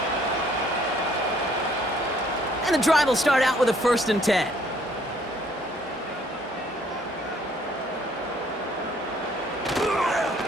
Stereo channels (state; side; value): normal; both; correlation 0.62